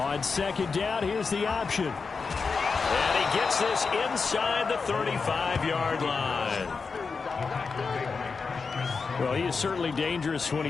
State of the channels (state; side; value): quieter; right; 4.9 dB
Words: second down, here's the option. And he gets this inside the 35-yard line. Well, he is certainly dangerous when